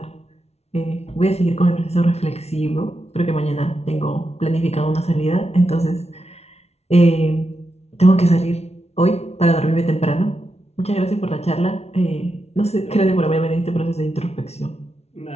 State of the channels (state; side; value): late; right; 0.31 ms